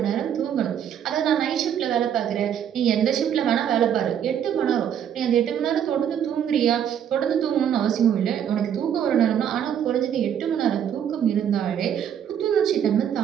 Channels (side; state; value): left; quieter; 9.1 dB